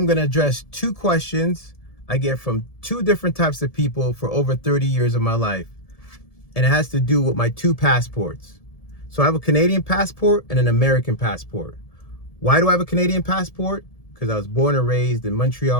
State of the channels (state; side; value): late; right; 1.7 ms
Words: going to address two questions I get from two different types of people for over 30 years of my life. And it has to do with my two passports. So I have a Canadian passport and an American passport. Why do I have a Canadian passport? Because I was born and raised in